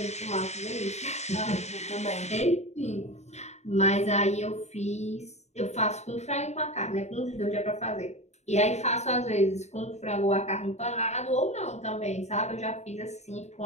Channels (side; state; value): right; late; 0.32 ms